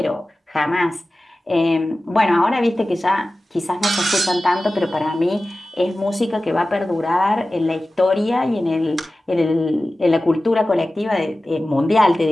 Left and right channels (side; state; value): both; normal; correlation 0.96